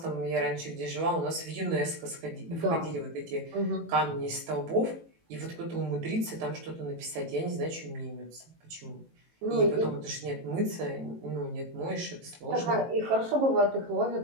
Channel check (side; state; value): left; late; 18 ms